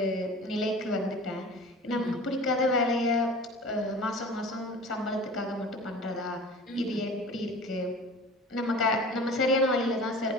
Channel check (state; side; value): normal; both; correlation 0.40